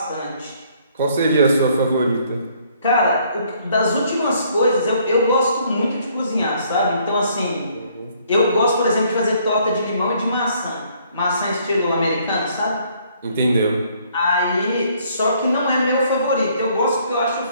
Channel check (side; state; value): both; inverted; correlation -0.64